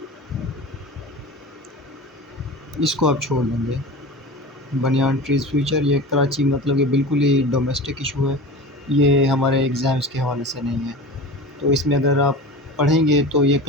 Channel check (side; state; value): both; normal; correlation 0.32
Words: اس کو آپ چھوڑ دیں گے۔ بنیان ٹریز فیوچر، یہ کراچی، مطلب یہ بالکل ہی ڈومیسٹک ایشو ہے، یہ ہمارے ایگزامس کے حوالے سے نہیں ہے۔ تو اس میں اگر آپ پڑھیں گے تو یہ